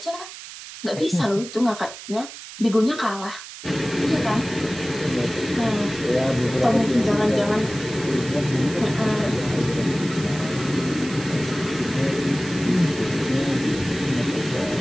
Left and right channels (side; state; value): right; noise; hiss, 13 dB below the sound